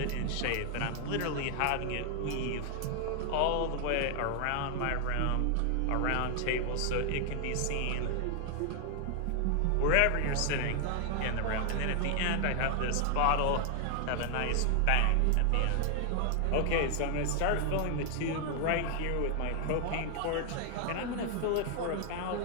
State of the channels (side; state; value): both; different; correlation 0.00